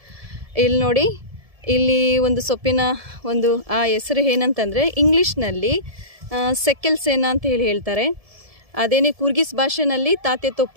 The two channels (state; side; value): late; left; 1.7 ms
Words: ಇಲ್ಲಿ ನೋಡಿ, ಇಲ್ಲಿ ಒಂದು ಸೊಪ್ಪಿನ ಒಂದು ಆ ಹೆಸರು ಏನಂತಂದರೆ ಇಂಗ್ಲೀಷ್ನಲ್ಲಿ ಸೆಕೆಲ್ ಸೇನಾ ಅಂತ ಹೇಳ್ತಾರೆ. ಅದೇನೇ ಕೂರ್ಗಿಸ್ ಭಾಷೆನಲ್ಲಿ ತಾತೆ